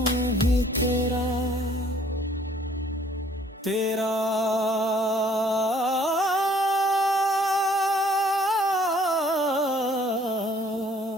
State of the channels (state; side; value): normal; both; correlation 0.59